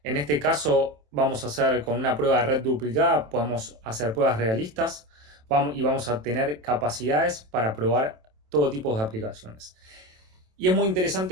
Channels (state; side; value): late; left; 27 ms